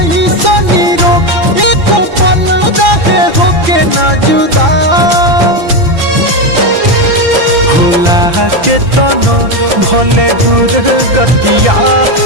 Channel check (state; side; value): late; left; 5.9 ms